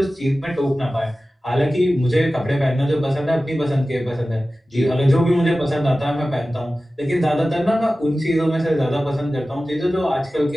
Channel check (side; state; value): both; normal; correlation 0.96